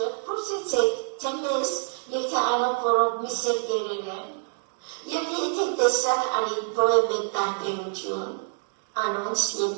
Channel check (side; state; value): left; silent; 61 dB below the other